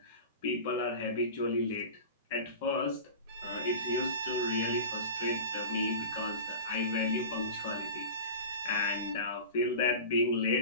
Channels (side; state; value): both; inverted; correlation -0.34